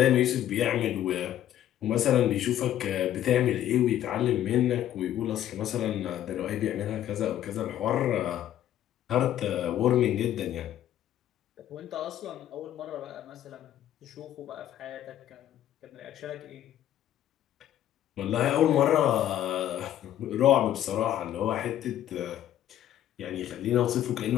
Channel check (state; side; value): quieter; right; 11.8 dB